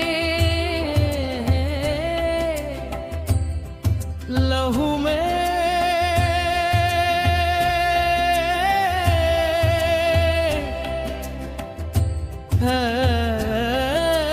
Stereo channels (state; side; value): identical; both; correlation 1.00